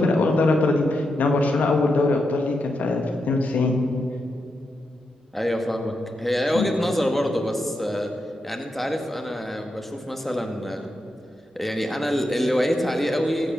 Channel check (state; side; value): normal; both; correlation 0.86